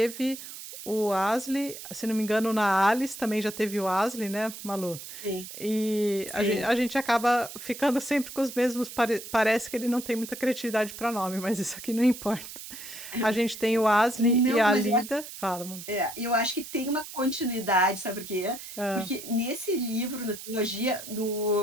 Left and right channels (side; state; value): right; noise; hiss, 12 dB below the sound